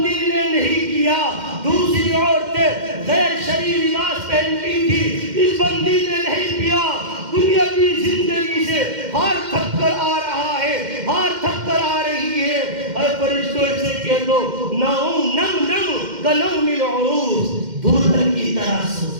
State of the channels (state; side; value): late; left; 2.1 ms